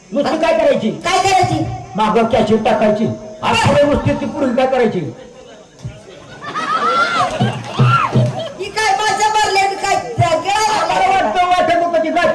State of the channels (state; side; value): identical; both; correlation 1.00